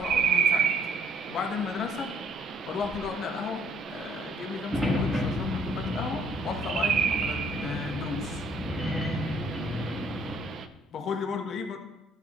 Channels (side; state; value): both; normal; correlation 0.62